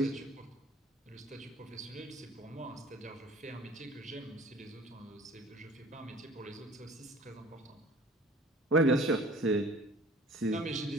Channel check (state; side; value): normal; both; correlation 0.47